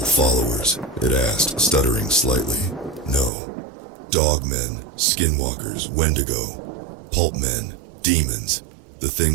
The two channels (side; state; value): left; drops out; at 3.3 s